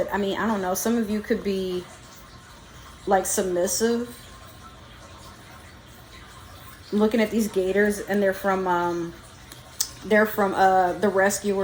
I mean, I don't know, some of you could be like submissive. I'm looking at these gators, and they're from The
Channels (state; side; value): identical; both; correlation 1.00